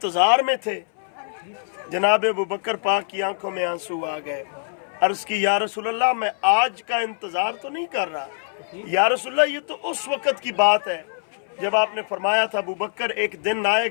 में थे। जनाब अबू बकर पाक की आंखों में आंसू आ गए। अर्ज़ की या रसूलल्लाह मैं आज का इंतज़ार तो नहीं कर रहा, या रसूलल्लाह ये तो उस वक़्त की बात है जब आपने फरमाया था अबू बकर एक दिन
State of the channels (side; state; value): right; silent; 60 dB below the other